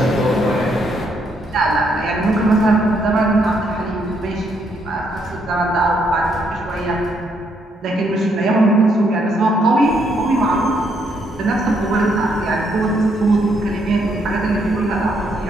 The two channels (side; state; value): both; normal; correlation 0.73